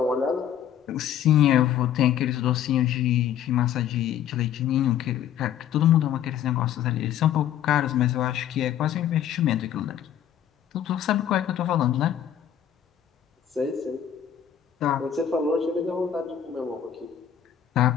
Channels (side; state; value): right; quieter; 10.0 dB